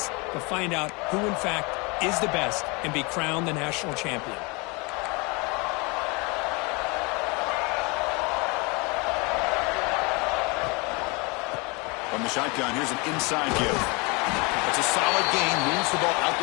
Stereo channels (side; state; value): right; quieter; 28.4 dB